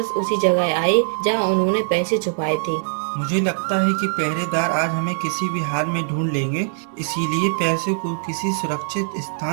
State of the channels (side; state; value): left; silent; 64 dB below the other